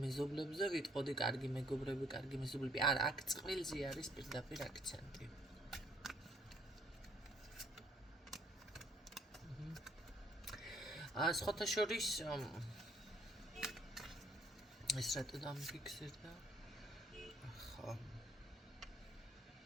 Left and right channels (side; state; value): both; normal; correlation 0.65